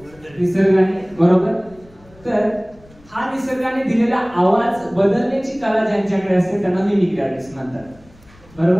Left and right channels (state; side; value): noise; left; rumble, 26 dB below the sound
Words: निसर्गाने बरोबर तर हा निसर्गाने दिलेला आवाज बदलण्याची कला ज्यांच्याकडे असते त्यांना मिमिक्री आर्टिस्ट म्हणतात